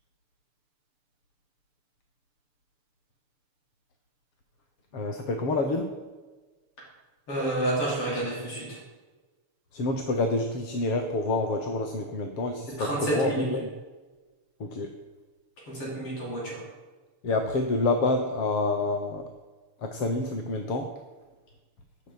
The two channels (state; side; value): late; right; 6.8 ms